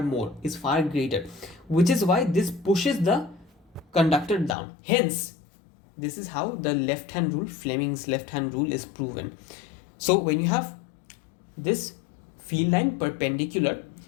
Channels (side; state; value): right; drops out; at 4.5 s